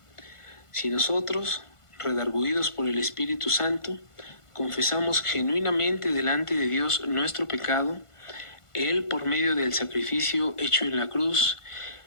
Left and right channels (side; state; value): right; late; 1.5 ms